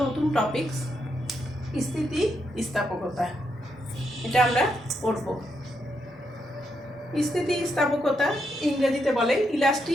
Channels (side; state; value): both; normal; correlation 0.81